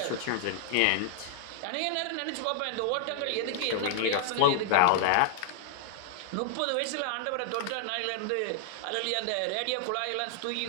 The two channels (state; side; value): different; both; correlation -0.01